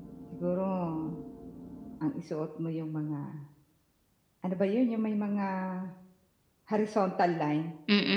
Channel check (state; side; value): identical; both; correlation 1.00